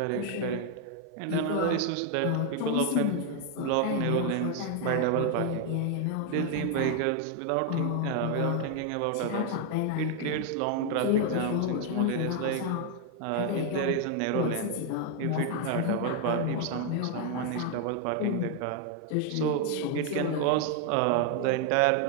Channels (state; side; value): different; both; correlation 0.00